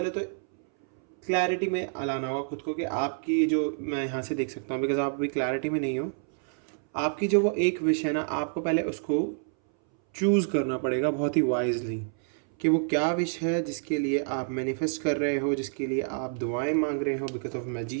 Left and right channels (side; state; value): left; silent; 59 dB below the other